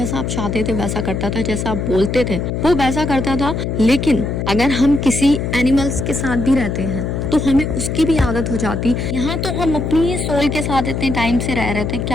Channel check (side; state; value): left; noise; hum, 2 dB below the sound